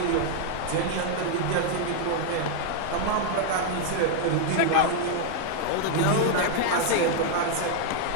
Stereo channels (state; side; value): different; both; correlation 0.00